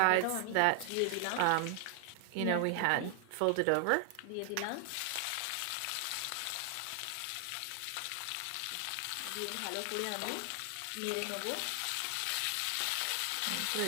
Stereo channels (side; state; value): both; different; correlation 0.00